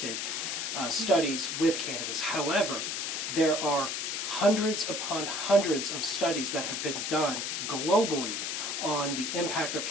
studies with cannabis. However, there are hundreds upon hundreds of studies that have been done globally on the impact of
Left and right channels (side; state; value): left; noise; hiss, 2 dB below the sound